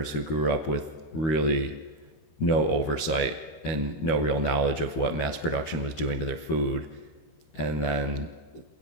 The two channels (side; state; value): right; late; 13 ms